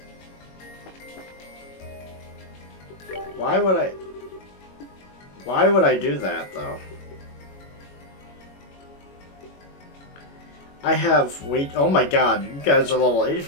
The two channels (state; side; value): late; right; 21 ms